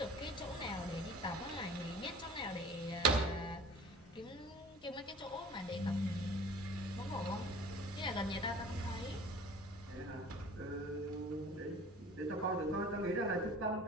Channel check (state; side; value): normal; both; correlation 0.45